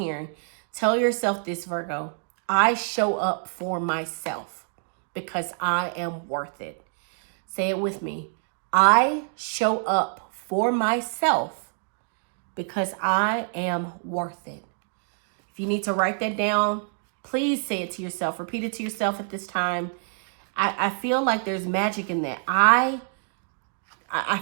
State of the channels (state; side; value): silent; left; 61 dB below the other